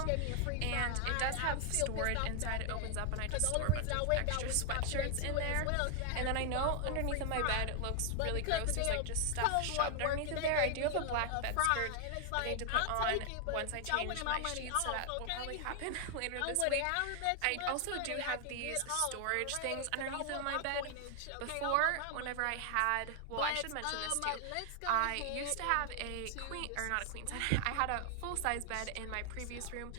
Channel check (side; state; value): both; different; correlation 0.00